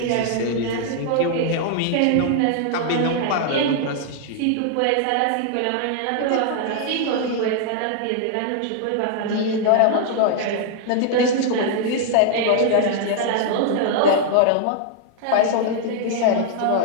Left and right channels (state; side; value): different; both; correlation 0.00